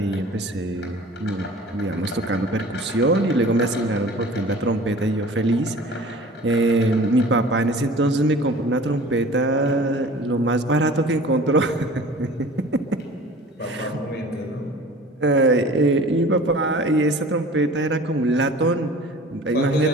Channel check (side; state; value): both; normal; correlation 0.44